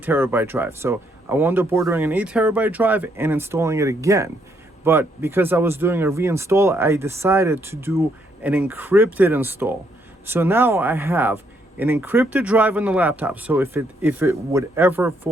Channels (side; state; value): both; normal; correlation 0.73